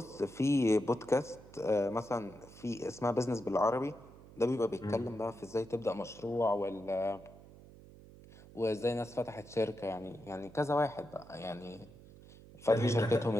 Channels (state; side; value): noise; right; hum, 20 dB below the sound